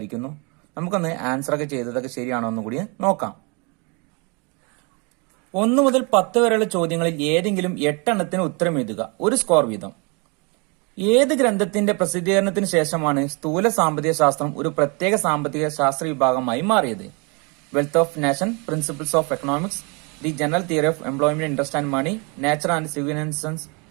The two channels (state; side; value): quieter; left; 31.7 dB